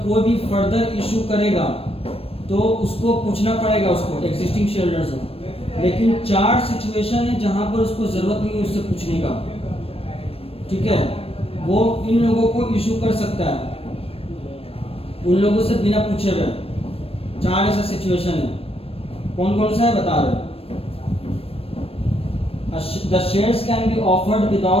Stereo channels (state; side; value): late; right; 0.28 ms